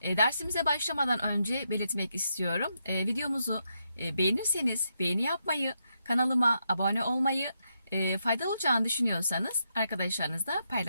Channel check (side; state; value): both; inverted; correlation -0.81